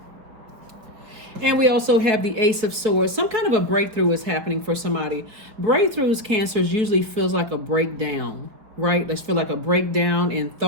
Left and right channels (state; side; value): late; left; 4.9 ms